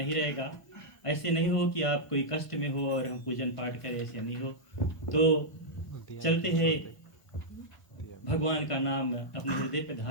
रहेगा। ऐसे नहीं हो कि आप कोई कष्ट में हो और हम पूजन पाठ करें, ऐसे नहीं हो। तो चलते हैं भगवान का नाम अपने हृदय पर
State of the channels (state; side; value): late; right; 1.5 ms